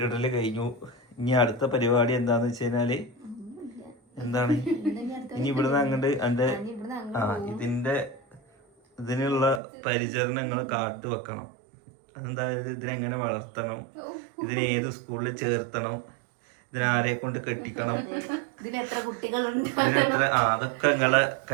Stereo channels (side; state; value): left; drops out; at 9.6 s